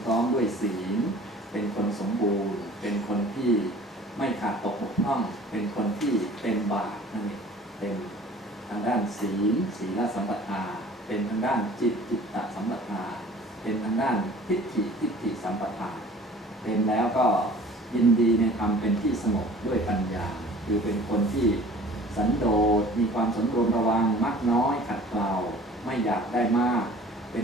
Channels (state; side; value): normal; both; correlation 0.47